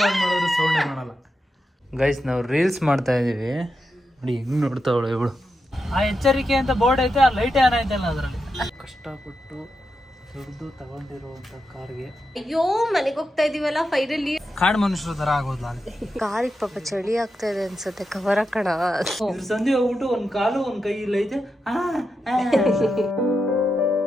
ಆನ್ ಮಾಡಿದ್ರೆ ಸೌಂಡೇ ಮಾಡಲ್ಲ. ಗೈಸ್ ನಾವು ರೀಲ್ಸ್ ಮಾಡ್ತಾ ಇದೀವಿ ನೋಡಿ, ಹೆಂಗ್ ನೋಡ್ತಾವಳು ಇವಳು. ಆ ಎಚ್ಚರಿಕೆ ಅಂತ ಬೋರ್ಡ್ ಐತೆ, ಆ ಲೈಟ್ ಆನ್ ಐತಲ್ಲ ಅದರಲ್ಲಿ. ಕಷ್ಟಪಟ್ಟು ದುಡ್ಡು ತಗೊಂಡಿರುವಂತ ಕಾರ್ಗೆ ಅಯ್ಯೋ ಮನೆಗೆ ಹೋಗ್ತಾ ಇದೀವಲ್ಲ ಫೈನಲಿ. ಕಾಡು ಮನುಷ್ಯರ ತರ ಆಗೋದ್ಲ ಕಾರಿಗೆ ಪಾಪ ಚಳಿ ಆಗ್ತಾ ಇದೆ ಅನ್ಸುತ್ತೆ, ಕವರ್ ಹಾಕೋಣ. ಸಂಧಿ ಹೋಗ್ಬಿಟ್ಟು ಒಂದ್ ಕಾಲು ಒಂದ್ ಕೈ ಇಲ್ಲ ಐತೆ.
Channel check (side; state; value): both; normal; correlation 0.87